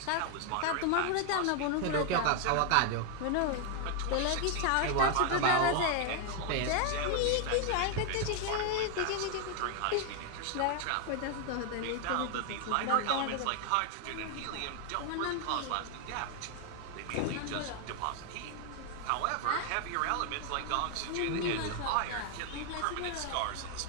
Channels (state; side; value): different; both; correlation 0.00